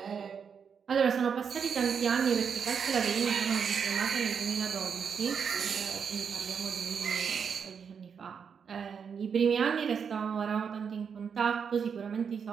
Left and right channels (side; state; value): left; quieter; 6.7 dB